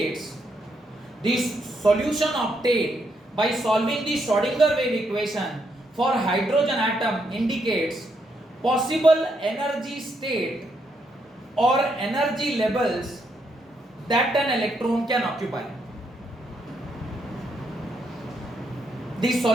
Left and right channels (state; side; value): normal; both; correlation 0.77